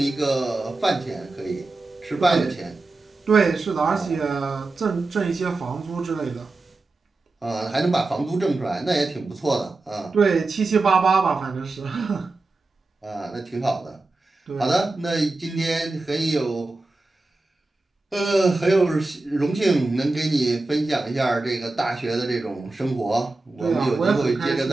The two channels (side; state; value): left; quieter; 3.2 dB